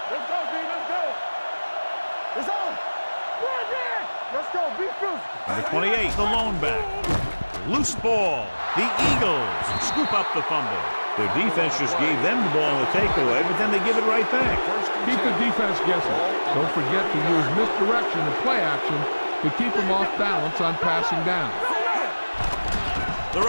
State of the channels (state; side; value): inverted; both; correlation -1.00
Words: Let's go, D. Let's go. It's on. Run it. Let's go. Be physical. Number 28, the lone back. Loose ball. The Eagles scoop up the fumble. Their defense just gave them the ball on the takeaway, but then they give it right back. Keep the defense guessing. Don't forget to use misdirection and play action to keep them off balance on passing down. The